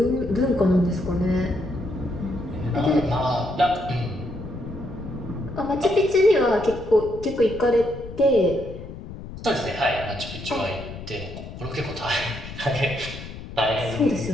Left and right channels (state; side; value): noise; left; rumble, 12 dB below the sound